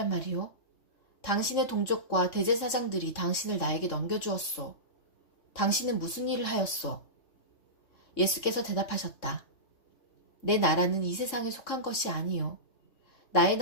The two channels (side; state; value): right; late; 3.6 ms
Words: 말이요? 당신의 동족과 대제사장들이 당신을 나에게 넘겨주었소. 당신은 무슨 일을 하였소? 예수께서 대답하셨다. 내 나라는 이 세상에 속한 것이 아니요. 나의